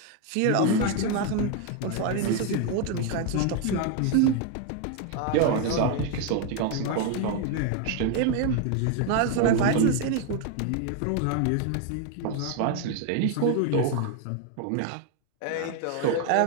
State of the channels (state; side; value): different; both; correlation 0.01